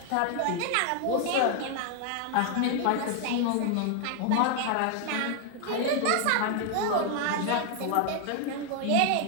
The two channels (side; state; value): both; different; correlation 0.00